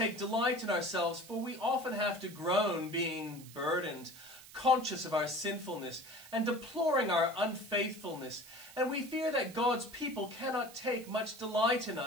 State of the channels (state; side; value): noise; right; hiss, 18 dB below the sound